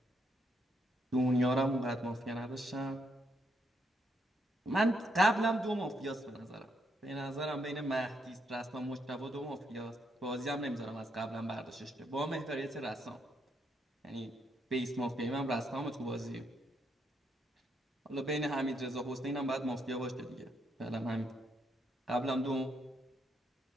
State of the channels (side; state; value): both; normal; correlation 0.76